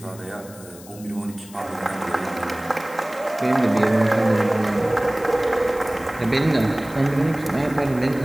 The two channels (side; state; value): left; noise; hiss, 20 dB below the sound